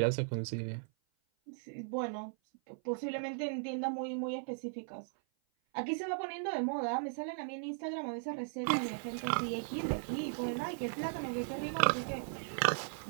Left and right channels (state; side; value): silent; left; 53 dB below the other